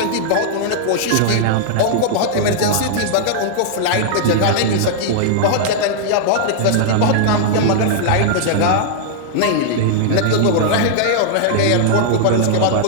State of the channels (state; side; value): different; both; correlation -0.01